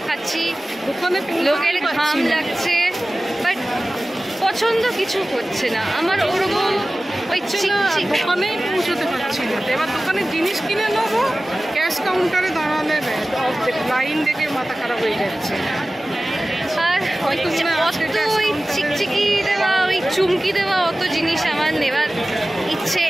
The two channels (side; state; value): both; normal; correlation 0.97